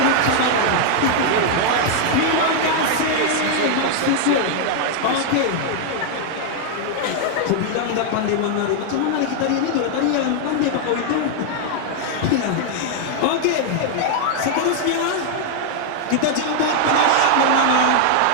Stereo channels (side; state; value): both; different; correlation 0.00